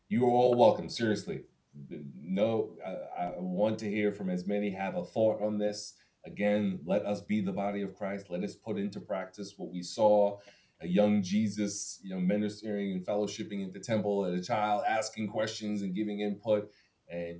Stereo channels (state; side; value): identical; both; correlation 1.00